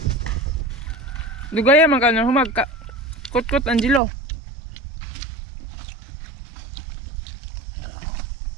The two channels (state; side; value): drops out; left; at 4.0 s